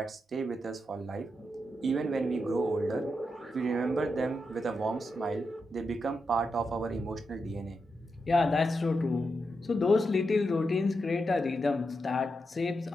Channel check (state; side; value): normal; both; correlation 0.86